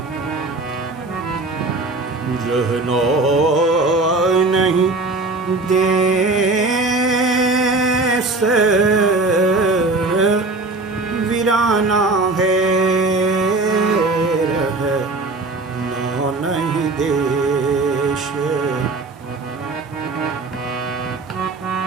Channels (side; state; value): left; quieter; 3.3 dB